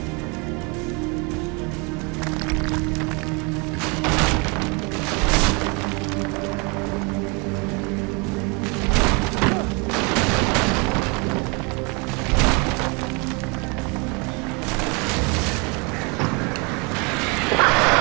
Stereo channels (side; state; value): left; quieter; 30.7 dB